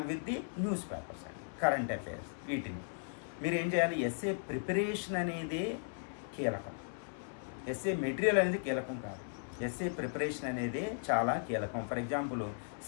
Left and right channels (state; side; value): silent; right; digital silence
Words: with the news papers అండి, కరెంట్ అఫైర్స్. వీటిని మీరు ఏం చేయాలి? ఎస్ఏ ప్రిపరేషన్ అనేదే కీలకం. ఎస్ఏ మెటీరియల్ అనేది కీలకం కాదు, ఎస్ఏ ప్రిపరేషన్ అనేది చాలా కీలకం. ఫర్ ఎగ్జాంపుల్